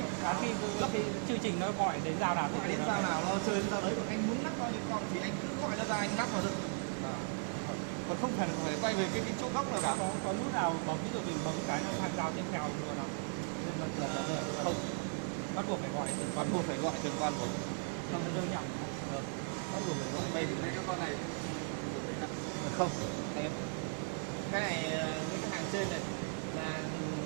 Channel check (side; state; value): left; silent; 53 dB below the other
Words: khi lắp thì chương trình nó gọi đến giao nào Gọi đến giao nào nó chơi đến giao đấy. Còn anh muốn lắp bao nhiêu con thì anh cứ gọi nó ra anh lắp vào được. Còn không cần phải quay về cái chỗ góc nào cả. Có nút nào có ví dụ mình bấm cái nó thành giao tiếp theo luôn nào? Không, Bắt buộc phải gọi từng bắt buộc phải gọi từng con một. không rơi nhầm. Bắt buộc phải gọi về thì cái con này không em cái này với cái hàng trên này là